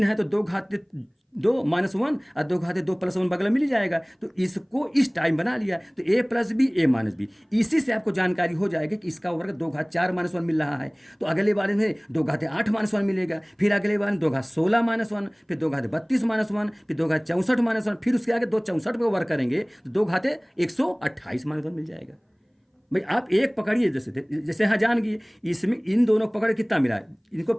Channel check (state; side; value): identical; both; correlation 1.00